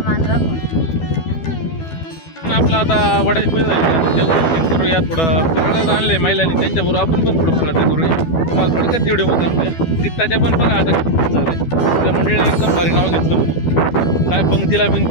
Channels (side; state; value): right; late; 12 ms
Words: मान राखून. आपलं आता वडाची पूजा झाली, करूया. थोडं फराळच आणलंय महिलांनी, त्यांच्याबरोबर आपण पण थोडं फराळाचं करूया. तुम्हाला थोडक्यात व्हिडिओ दाखवूया. गीताच्या पण बघा आता किती झालंय. त्या मंडळीने एकदम भारी नाव घेतलं, काय पंक्तीला